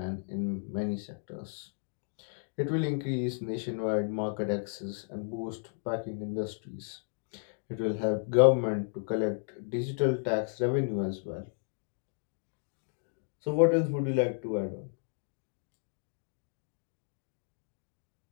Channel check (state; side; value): silent; right; digital silence